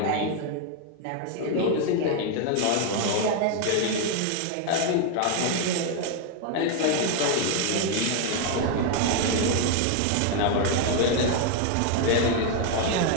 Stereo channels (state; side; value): different; both; correlation 0.01